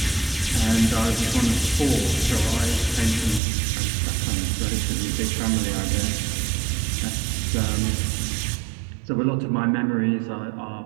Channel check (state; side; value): drops out; left; at 3.4 s